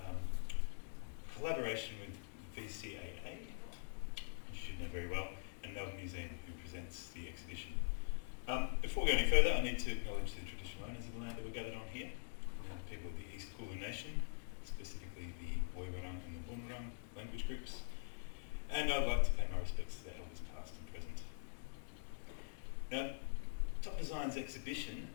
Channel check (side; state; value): right; silent; digital silence